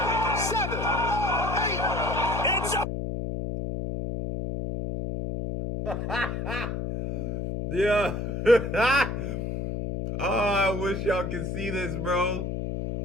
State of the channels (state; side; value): noise; left; hum, 3 dB below the sound